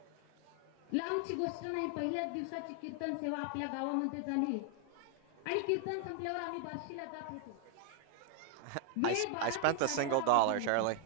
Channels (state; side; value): different; both; correlation 0.00